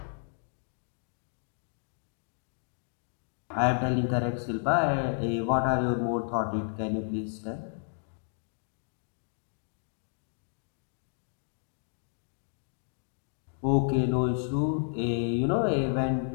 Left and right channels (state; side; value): silent; right; digital silence